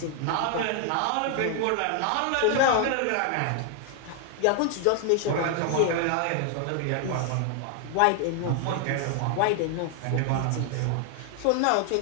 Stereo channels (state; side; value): different; both; correlation 0.00